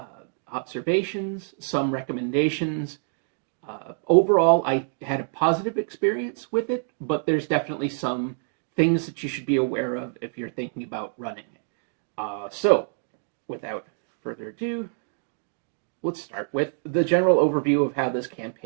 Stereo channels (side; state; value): left; silent; digital silence